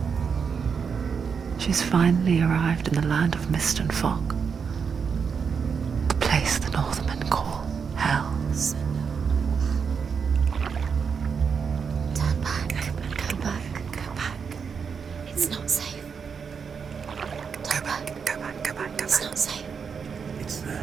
She's finally arrived in the land of mist and fog. The place the Northmen call hell. Turn back. Go back. Go back. It's not safe. Go back. Go back, go back, go It's back. not safe. It's there.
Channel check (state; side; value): quieter; left; 6.2 dB